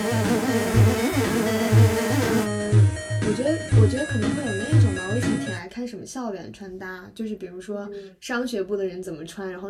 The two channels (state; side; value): identical; both; correlation 1.00